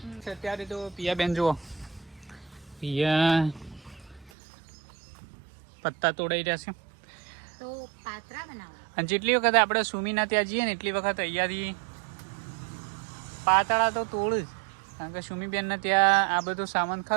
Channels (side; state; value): left; drops out; at 4.3 s